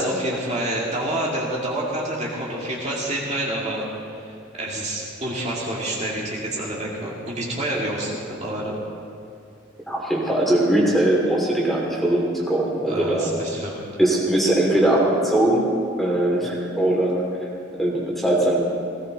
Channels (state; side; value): normal; both; correlation 0.58